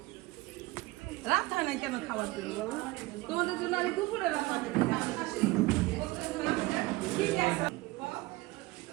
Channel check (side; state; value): left; quieter; 20.7 dB